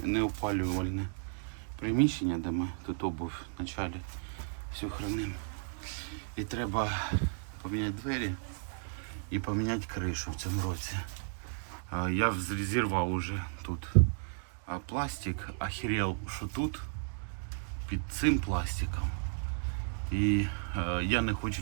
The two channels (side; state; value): left; silent; digital silence